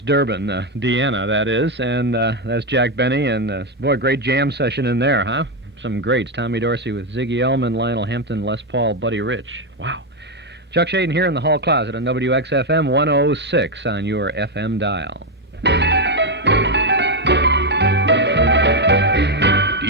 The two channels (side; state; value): both; normal; correlation 0.05